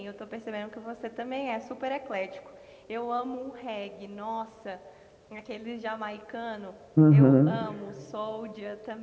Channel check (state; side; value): identical; both; correlation 1.00